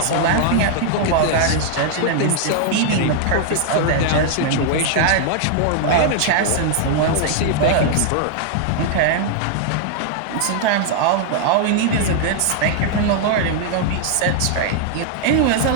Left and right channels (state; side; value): different; both; correlation -0.01